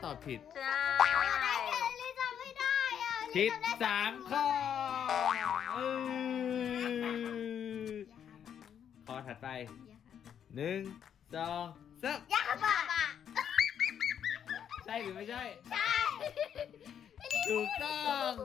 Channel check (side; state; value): right; quieter; 8.8 dB